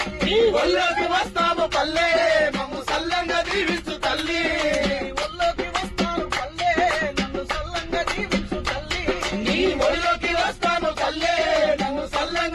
ఒళ్ళోకి వస్తాము పల్లె మమ్ము సల్లంగా దీవించు తల్లి. ఒళ్ళోకి వస్తాను పల్లె నన్ను సల్లంగా దీవించు తల్లి. నీ ఒడిలో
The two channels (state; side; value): identical; both; correlation 1.00